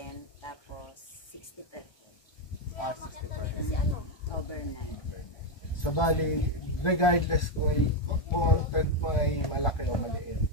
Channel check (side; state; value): right; late; 1.2 ms